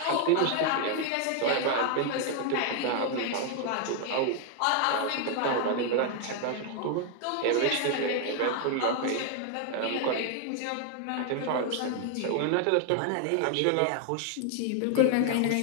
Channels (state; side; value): different; both; correlation 0.00